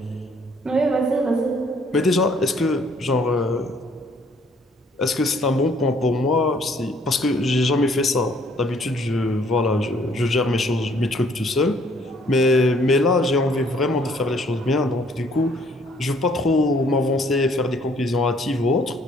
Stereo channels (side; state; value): both; normal; correlation 0.62